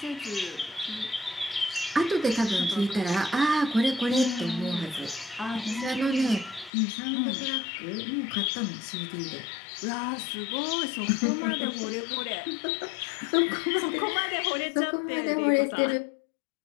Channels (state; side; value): drops out; right; at 6.7 s